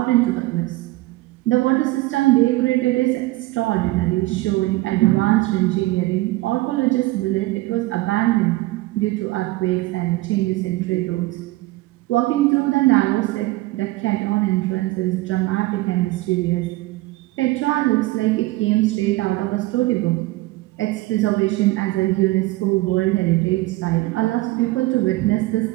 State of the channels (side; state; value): left; quieter; 19.5 dB